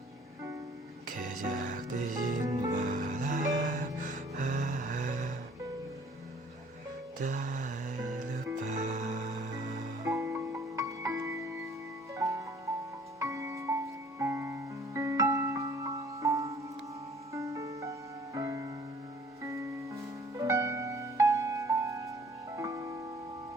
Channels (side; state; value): both; normal; correlation 0.55